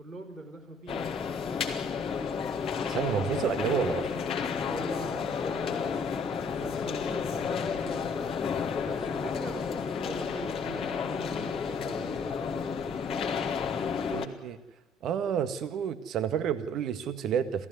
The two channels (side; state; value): both; normal; correlation 0.60